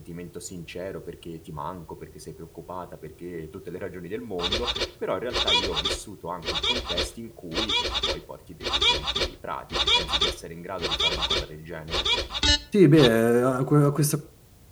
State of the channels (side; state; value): both; identical; correlation 1.00